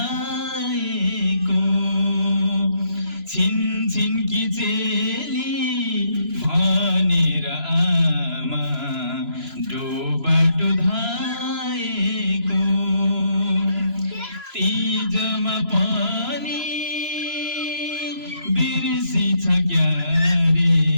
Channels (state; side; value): late; left; 3.0 ms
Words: छिन् कि चेली भनेर आमा डोबाटो धाएको तीजमा पनि बिर्सी छ क्यारे